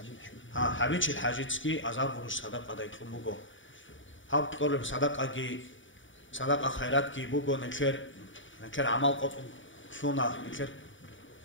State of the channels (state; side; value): late; right; 0.56 ms